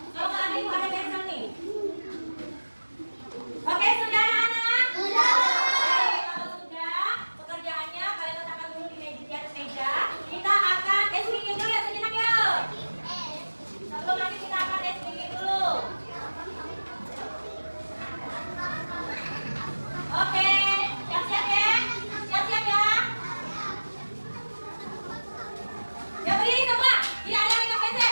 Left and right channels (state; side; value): inverted; both; correlation -1.00